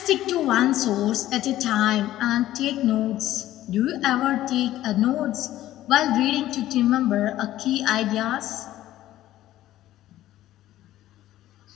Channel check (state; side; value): quieter; right; 14.1 dB